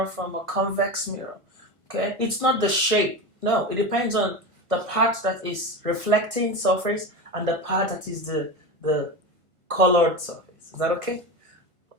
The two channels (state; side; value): late; left; 1.6 ms